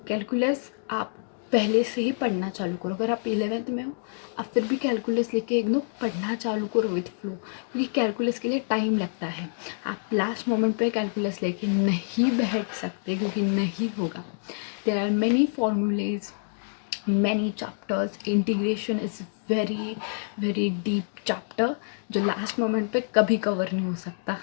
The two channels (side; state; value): right; silent; digital silence